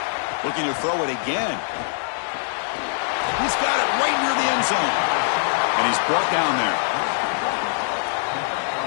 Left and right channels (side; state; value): right; silent; digital silence